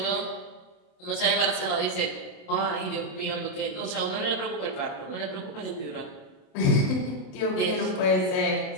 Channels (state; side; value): late; right; 27 ms